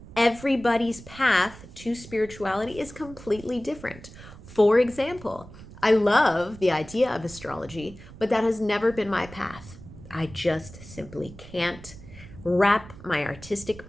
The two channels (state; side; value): noise; right; rumble, 17 dB below the sound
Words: Everybody's path to spirituality is completely different. For example, I love the idea of astrology, but that has never been my path. I just simply can't wrap my artistic